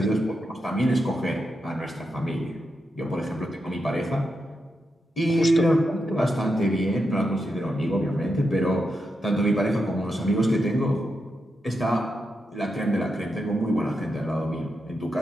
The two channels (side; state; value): both; normal; correlation 0.86